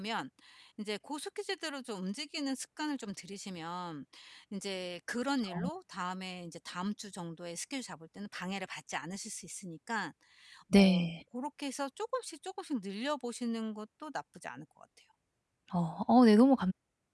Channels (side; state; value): both; identical; correlation 1.00